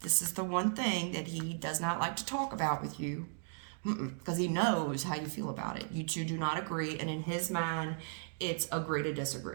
this is the one thing that he does not like to talk about with you, because he knows how you feel about it. You two do not agree, and in his mind, it's agree to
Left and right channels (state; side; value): silent; left; 54 dB below the other